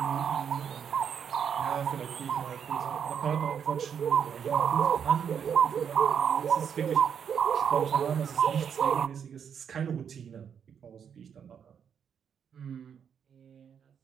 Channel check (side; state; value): left; quieter; 7.7 dB